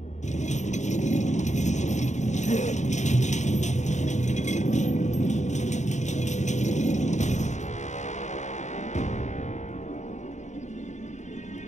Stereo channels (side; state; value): right; late; 0.34 ms